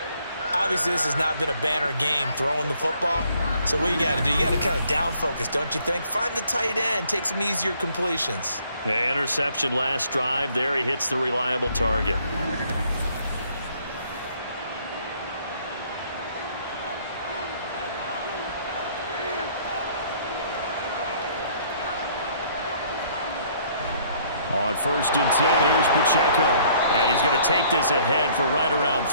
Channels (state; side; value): inverted; both; correlation -0.62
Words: Obviously, this has not been a banner game throwing the football. So what you got to do, you got to kind of down focus, don't you think? Find the tight end, take some easier completions. The interception last drive. There he hits the reliable target. On 1st and 10, here's Pacheco. And he's going to take this ahead for right around